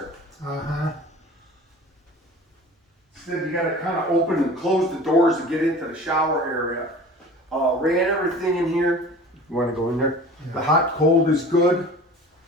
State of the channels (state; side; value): normal; both; correlation 0.41